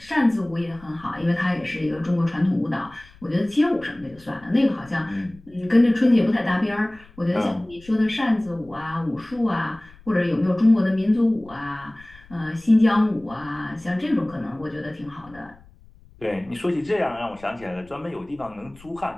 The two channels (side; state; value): left; noise; rumble, 24 dB below the sound